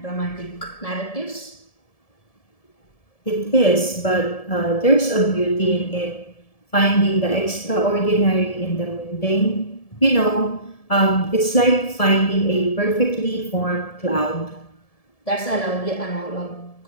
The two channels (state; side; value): late; right; 1.7 ms